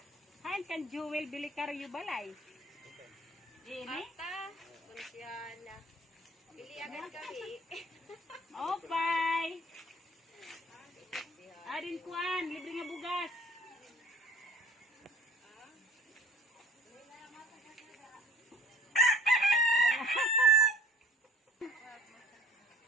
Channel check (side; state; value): both; normal; correlation 0.49